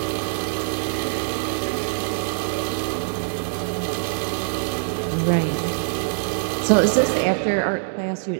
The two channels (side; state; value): left; silent; digital silence